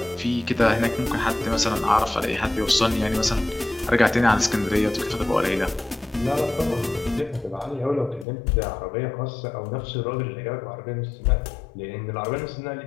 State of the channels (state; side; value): drops out; right; at 8.2 s